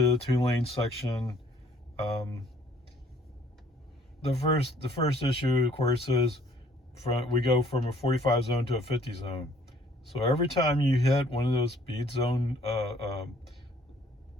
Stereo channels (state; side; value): normal; both; correlation 0.59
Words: the 2-lane section. The first issue, of course, is we go from a 45 zone to a 50 zone. So every time you hit one of those speed